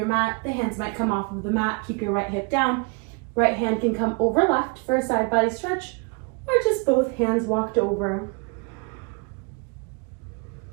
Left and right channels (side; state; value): left; quieter; 31.6 dB